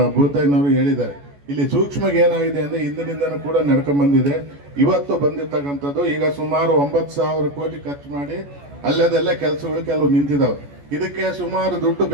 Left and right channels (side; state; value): left; late; 14 ms